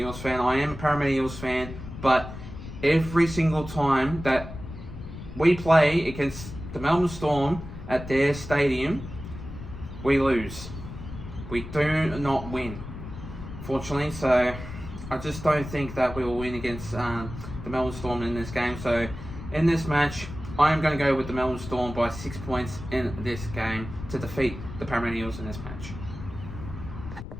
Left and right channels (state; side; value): noise; left; rumble, 11 dB below the sound